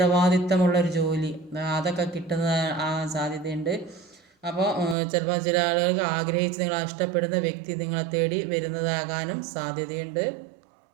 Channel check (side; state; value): left; drops out; at 5.0 s